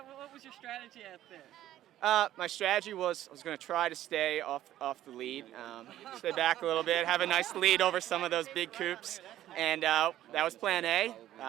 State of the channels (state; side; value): quieter; left; 13.1 dB